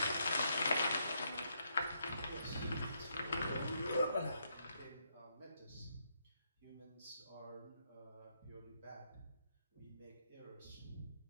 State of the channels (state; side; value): inverted; both; correlation -0.76